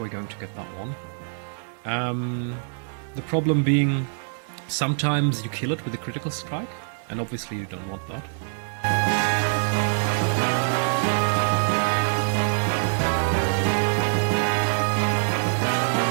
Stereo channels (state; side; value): silent; left; 62 dB below the other